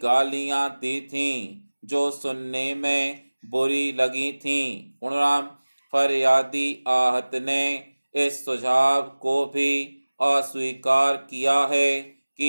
गालियां दी थीं जो सुनने में बुरी लगी थीं। पूर्णराम। फरियादी आहत ने इस सुझाव को भी अस्वीकार किया है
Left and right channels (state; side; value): inverted; both; correlation -1.00